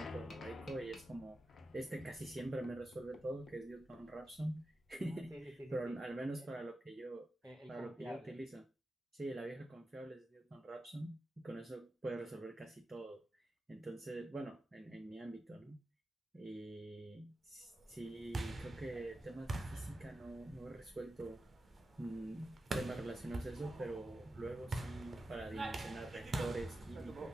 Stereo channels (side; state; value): both; normal; correlation 0.91